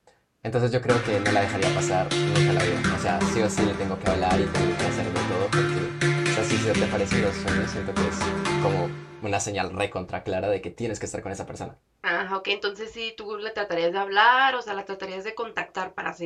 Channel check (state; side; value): identical; both; correlation 1.00